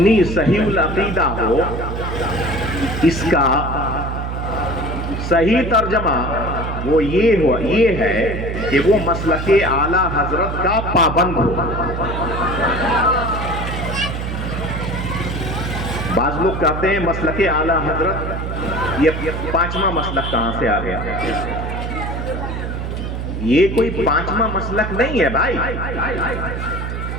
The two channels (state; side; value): noise; right; hum, 4 dB below the sound